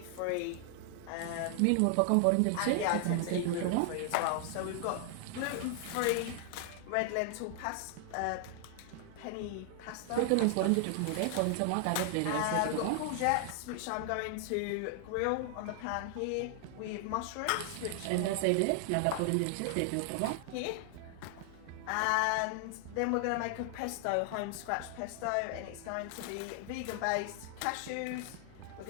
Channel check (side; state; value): both; different; correlation 0.00